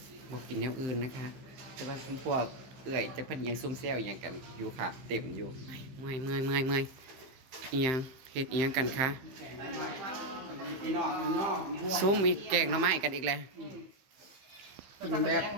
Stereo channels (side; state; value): left; late; 15 ms